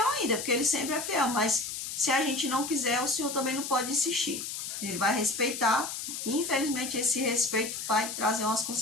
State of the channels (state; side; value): noise; left; hiss, 6 dB below the sound